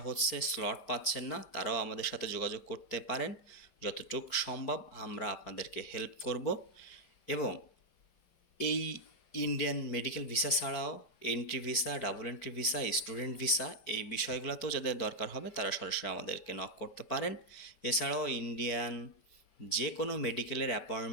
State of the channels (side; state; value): right; late; 4.5 ms